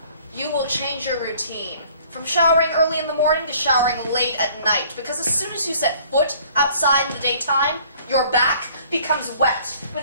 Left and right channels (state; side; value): inverted; both; correlation -0.56